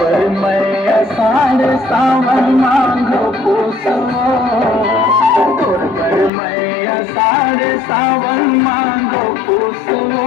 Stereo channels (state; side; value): drops out; right; at 6.3 s